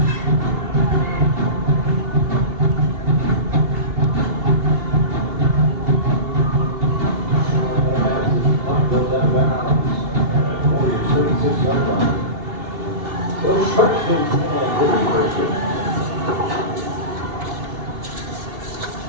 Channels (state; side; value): late; left; 2.7 ms